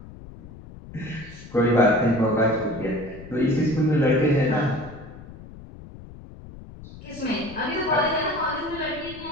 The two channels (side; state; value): left; noise; rumble, 16 dB below the sound